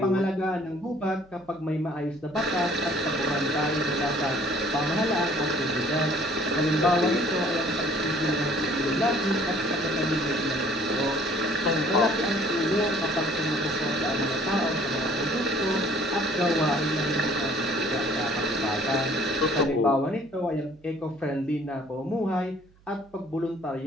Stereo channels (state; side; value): noise; right; hum, 29 dB below the sound